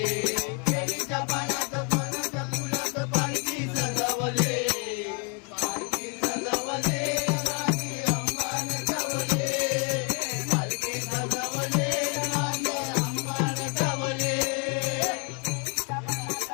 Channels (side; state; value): right; quieter; 36.4 dB